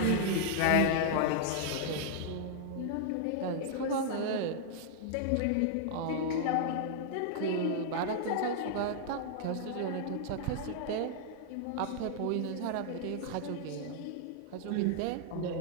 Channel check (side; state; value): both; different; correlation -0.01